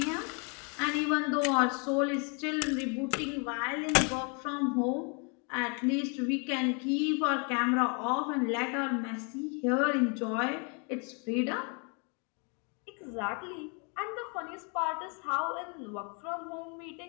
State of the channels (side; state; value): right; quieter; 36.0 dB